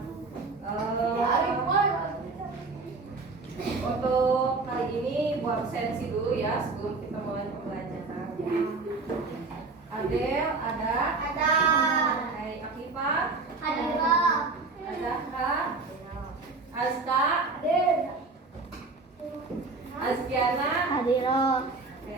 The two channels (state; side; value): quieter; left; 3.9 dB